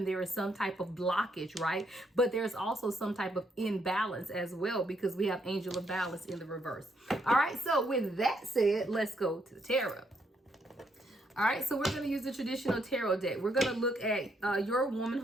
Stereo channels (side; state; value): both; normal; correlation 0.75